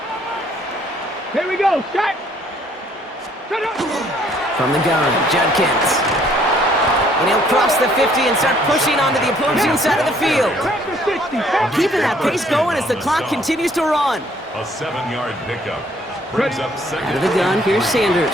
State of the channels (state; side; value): normal; both; correlation 0.63